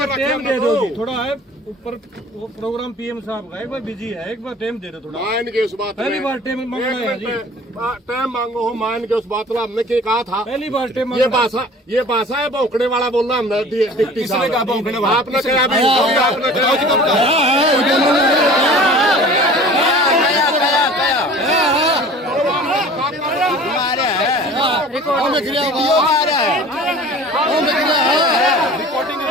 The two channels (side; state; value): both; normal; correlation 0.44